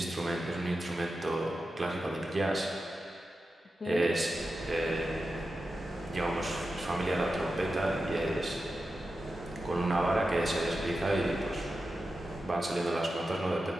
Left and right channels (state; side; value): normal; both; correlation 0.91